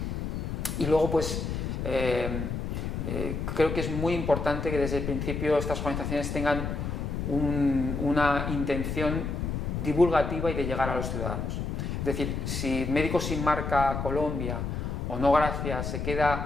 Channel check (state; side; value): noise; left; rumble, 3 dB below the sound